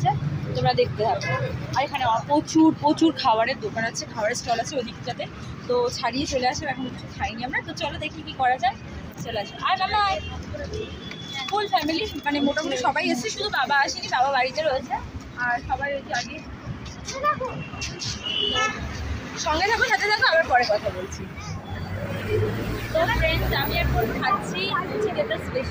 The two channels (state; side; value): identical; both; correlation 1.00